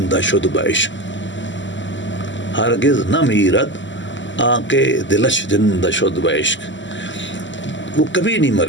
شد بعشق, ہرگز نہ میرد آنکے دلش زندہ شد بعشق. وہ کبھی نہیں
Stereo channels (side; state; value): right; late; 0.54 ms